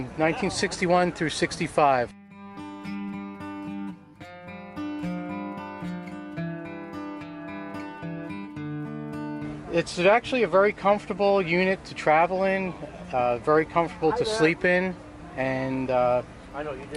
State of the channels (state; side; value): identical; both; correlation 1.00